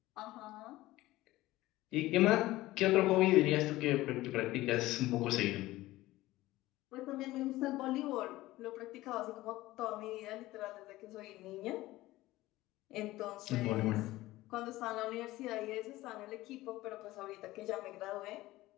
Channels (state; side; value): quieter; right; 17.4 dB